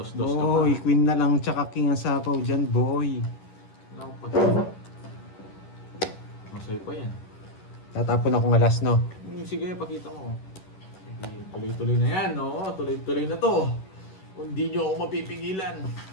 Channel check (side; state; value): right; late; 11 ms